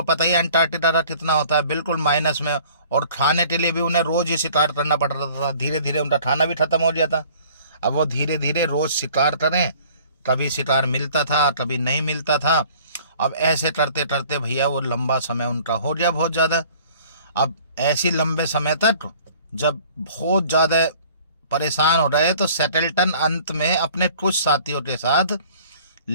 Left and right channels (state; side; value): inverted; both; correlation -0.51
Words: पता ही अंटार्कटिका का कितना होता है, बिल्कुल माइनस में, और खाने के लिए भी उन्हें रोज ही शिकार करना पड़ रहा था। धीरे धीरे उनका खाना भी खत्म हो गया था। अब वो धीरे धीरे रोज शिकार करें, कभी शिकार मिलता था कभी नहीं मिलता था। अब ऐसे करते करते भैया वो लंबा समय उनका हो गया बहुत ज़्यादा। अब ऐसी लंबे समय तक जब बहुत ज़्यादा परेशान हो रहे तो सेटल्टन अंत में अपने कुछ साथियों के साथ